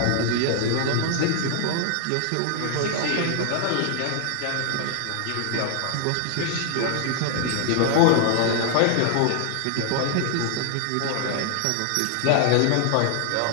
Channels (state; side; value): different; both; correlation 0.00